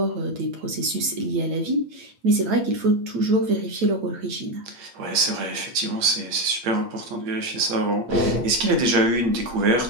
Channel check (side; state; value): left; late; 8.6 ms